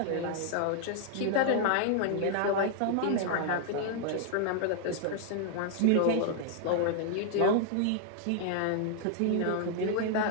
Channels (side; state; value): both; different; correlation 0.00